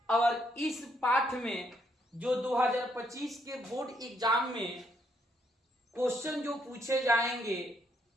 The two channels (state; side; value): normal; both; correlation 0.73